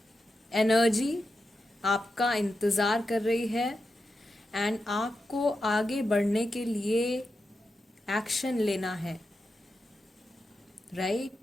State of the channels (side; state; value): both; normal; correlation 0.88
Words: एनर्जी आपका इंतज़ार कर रही है एंड आपको आगे बढ़ने के लिए एक्शन लेना है,